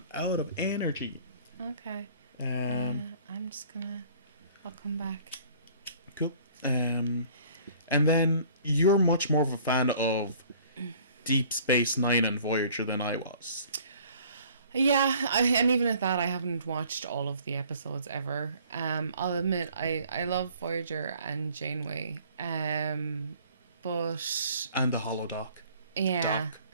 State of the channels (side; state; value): both; inverted; correlation -0.54